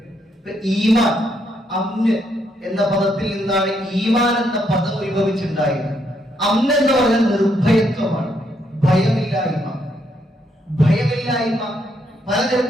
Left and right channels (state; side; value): normal; both; correlation 0.75